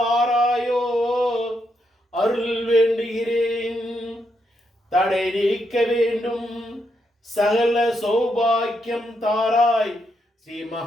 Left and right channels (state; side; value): normal; both; correlation 0.80